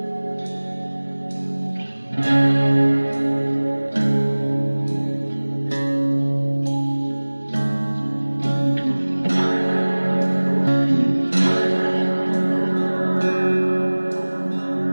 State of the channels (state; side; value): inverted; both; correlation -1.00